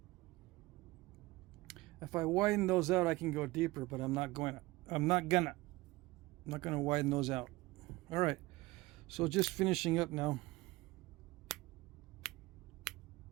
if I widen those out, I can go deeper, but I'm not gonna widen those out. All right, so just finishing up now.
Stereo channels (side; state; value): left; quieter; 20.6 dB